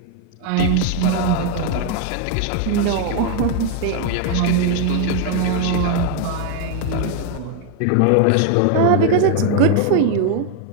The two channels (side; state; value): both; different; correlation 0.01